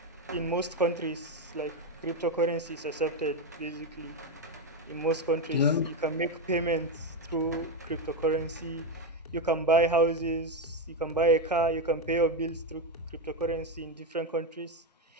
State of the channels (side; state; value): both; normal; correlation 0.09